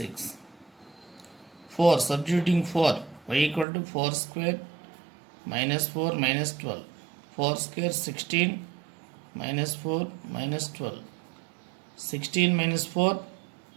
4, substituting 4, y equal to 4 square minus 4 minus 12, 4 square 16 minus 4 minus 12, 16 minus 4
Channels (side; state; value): left; drops out; at 3.7 s